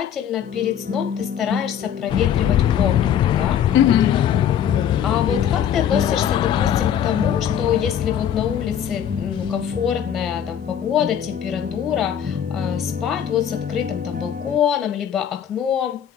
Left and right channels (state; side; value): quieter; right; 9.2 dB